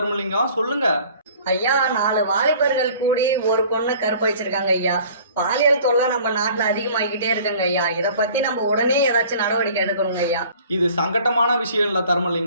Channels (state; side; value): inverted; both; correlation -0.49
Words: சொல்லுங்க. ஐயா, 4 வாலிபர்கள் கூடி ஒரு பொண்ணை கற்பழிச்சிருக்காங்க ஐயா. பாலியல் தொல்லை நம்ம நாட்டுல அதிகமாகிக்கிட்டே இருக்குங்க ஐயா. இதை பத்தி நம்ம உடனே ஏதாச்சும் நடவடிக்கை எடுக்கணுங்க ஐயா. இது சங்கட்டமான விஷயம் இல்லை